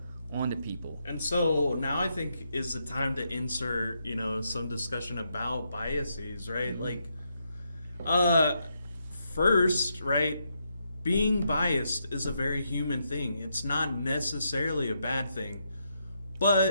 onto people. And so now I think is the time to insert, some discussion about biases, right? Like, first, right, being biased is a very human thing. It's not necessarily a bad thing.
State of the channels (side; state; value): both; inverted; correlation -0.80